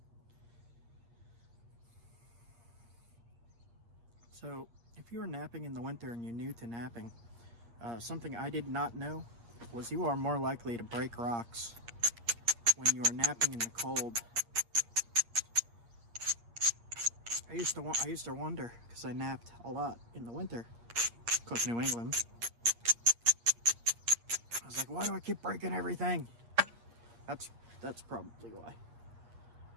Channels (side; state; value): left; late; 8.5 ms